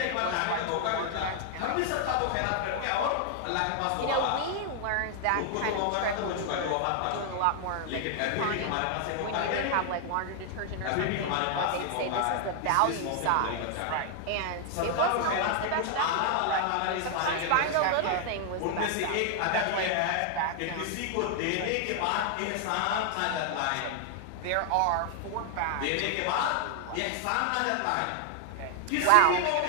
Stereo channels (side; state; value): both; different; correlation 0.00